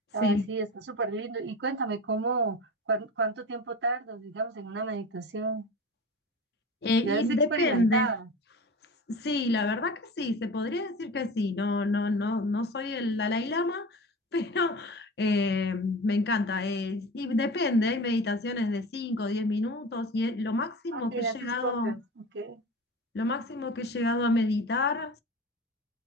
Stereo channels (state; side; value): normal; both; correlation 0.33